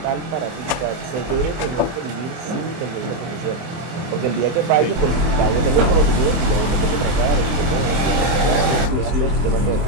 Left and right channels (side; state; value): left; late; 24 ms